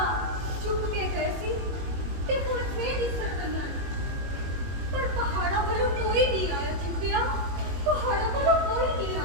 चुप के गए सी ते हुण फेर दिसर पईयां ने। पर पहाड़ां वालों कोई नहीं आया जीतिया, पहाड़ां वालों कोई नहीं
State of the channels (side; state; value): left; late; 21 ms